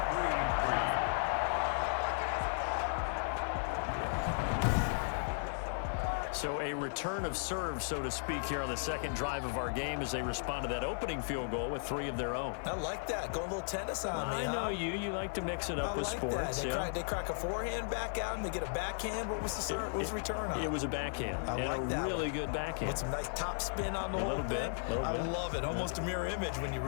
So a return of serve, so to speak, here on the 2nd drive of our game as they respond to that opening field goal with 3 of their own. I like that. Go a little tennis on me, I know you. You like to mix it up with sports. They crack a forehand back out and they get a backhand. What was the serve? What was the return on? It was a backhand. I like and a really good backhand. With some nice top spin on the whole thing. I love it. Almost a mirror image when you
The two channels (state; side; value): silent; right; 54 dB below the other